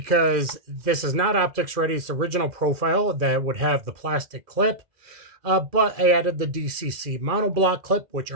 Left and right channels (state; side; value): late; left; 2.4 ms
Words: this is not optics ready. It's the original profile that would have the plastic clip. But I added the DCC monoblock clip, which